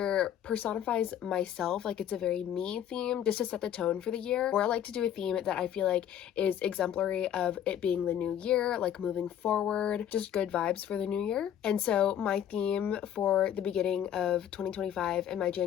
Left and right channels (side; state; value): right; quieter; 10.1 dB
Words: personifies myself, like it's a very me theme just to set the tone for the year, or I like to do a theme that I feel like is exemplary of it being the new year, like moving forward, just good vibes for the new year. And so my theme for the beginning of 2025 and my